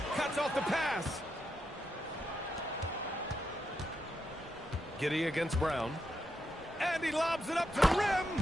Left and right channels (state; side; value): normal; both; correlation 0.83